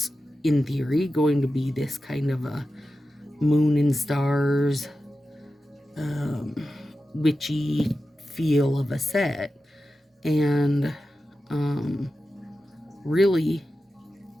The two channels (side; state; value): both; normal; correlation 0.92